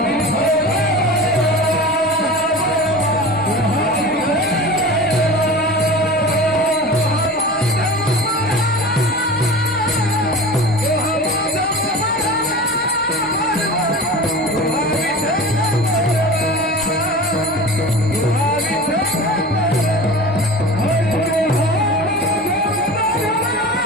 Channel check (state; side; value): normal; both; correlation 0.34